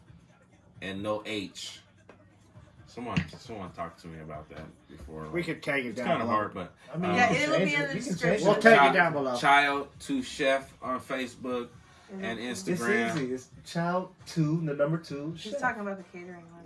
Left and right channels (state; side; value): identical; both; correlation 1.00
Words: and no H. Someone talk to me about that before. We could take it It's down. kind of below. hard, but I mean, Yeah, you can it'll change be in it. the You can change description. We'll it. take it down below. Child to Chef on Facebook and It's Instagram. easy. It's child 2, the number 2. She's talking about the catering one.